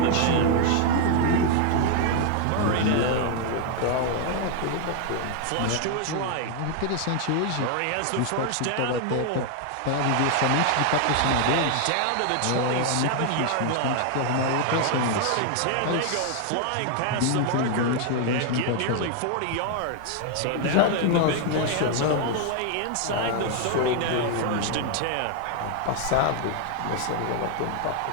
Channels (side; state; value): both; different; correlation 0.00